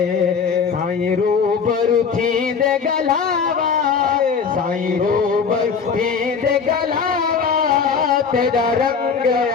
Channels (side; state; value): right; quieter; 5.9 dB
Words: साईं रूबरू थी दे गलावा साईं रूबरू थी दे गलावा तेरा रंग